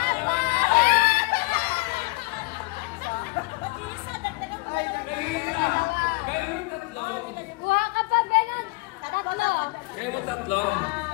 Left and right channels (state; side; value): quieter; right; 25.3 dB